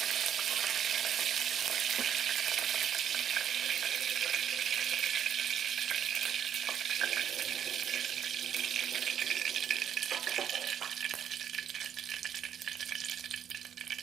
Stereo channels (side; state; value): left; quieter; 9.2 dB